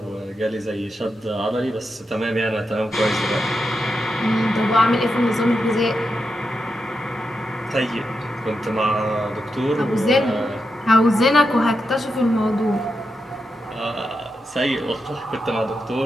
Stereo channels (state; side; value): normal; both; correlation 0.87